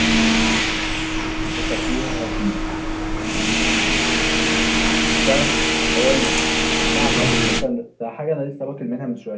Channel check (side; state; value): both; identical; correlation 1.00